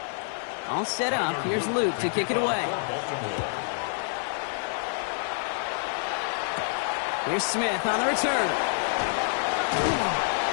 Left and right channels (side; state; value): right; silent; digital silence